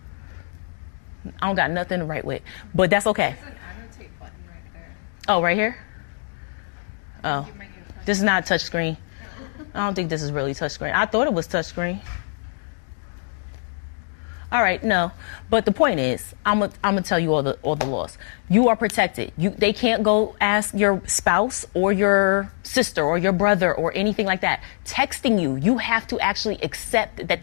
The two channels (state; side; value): silent; right; digital silence